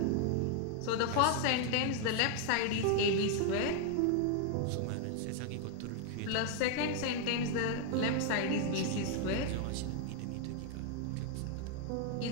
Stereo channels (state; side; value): different; both; correlation 0.00